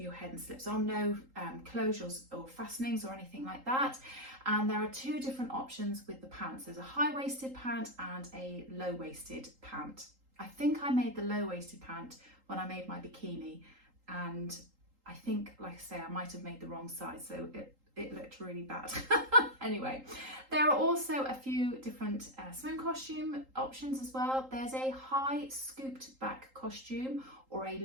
head and slips on, no closures or fastenings or anything like that. And there are two different options with the pants. There's a high-waisted pant and a low-waisted pant. I think I made the low-waisted pant when I made my bikini, and I think, like I say, I might have made the wrong size, so it looked really bad. Anyway, there are also a few different swim costume options as well. There's a high scooped back costume or a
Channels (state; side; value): late; left; 3.8 ms